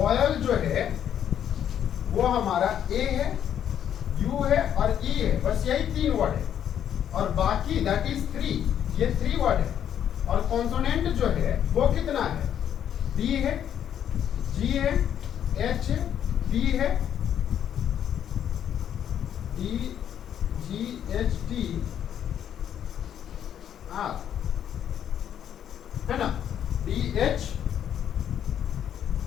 जो है वो हमारा ए है, यू है और ई है, बस यही 3 वर्ड है, और बाकी दैट इज 3, ये 3 वर्ड है। और कॉन्सोनेंट जो है वो कितना है, डी है, जी है, एच है, टी है, D G H T R, है ना, डी एच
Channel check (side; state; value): right; quieter; 9.6 dB